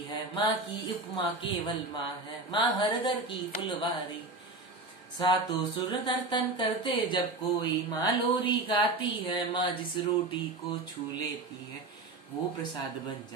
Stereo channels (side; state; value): left; quieter; 3.1 dB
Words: है, माँ की उपमा केवल माँ है, माँ हर घर की फुलवारी। सातों सुर नर्तन करते जब कोई माँ लोरी गाती है, माँ जिस रोटी को छू लेती है वो प्रसाद बन